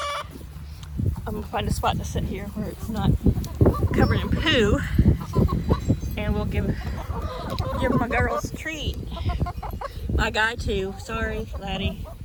I'm going to find a spot to sit here where it's not covered in poo. And we'll give my girls a treat. My guy too. Sorry, laddie.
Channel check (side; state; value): both; identical; correlation 1.00